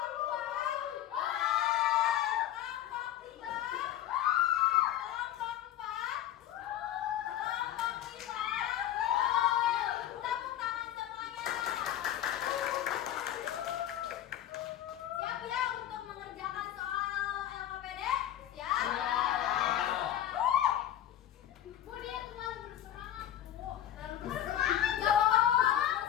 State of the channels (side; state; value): right; quieter; 11.8 dB